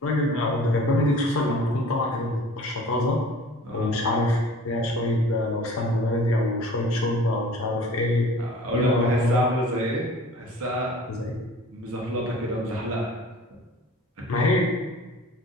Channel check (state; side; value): normal; both; correlation 0.46